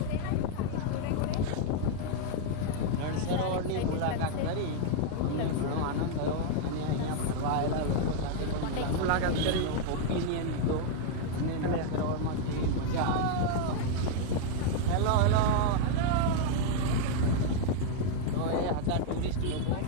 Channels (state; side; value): different; both; correlation 0.00